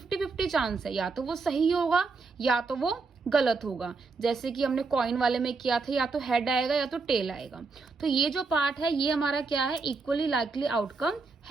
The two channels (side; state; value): left; quieter; 4.2 dB